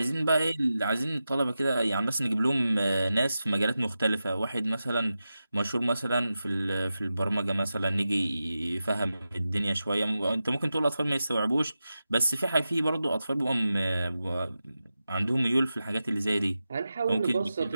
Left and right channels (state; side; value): inverted; both; correlation -0.92